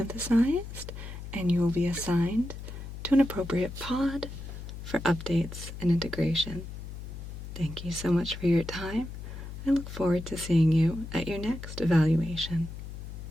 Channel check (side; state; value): left; noise; hum, 10 dB below the sound